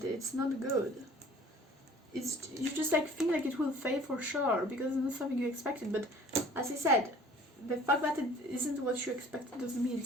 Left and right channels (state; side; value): normal; both; correlation 0.50